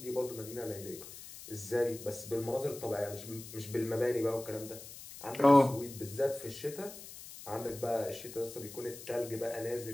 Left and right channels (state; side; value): noise; left; hiss, 14 dB below the sound